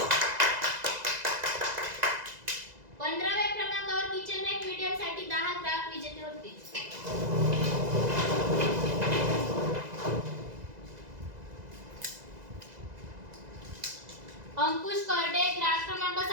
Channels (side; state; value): left; late; 2.0 ms